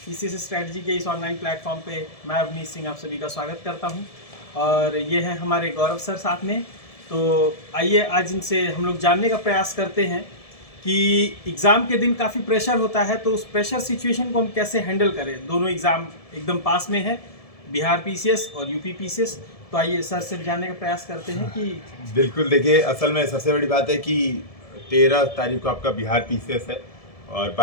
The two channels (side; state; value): right; late; 1.7 ms